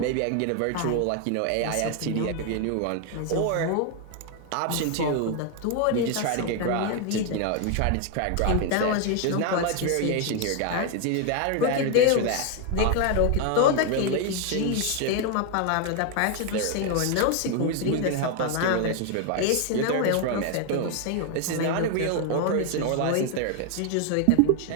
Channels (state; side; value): different; both; correlation 0.01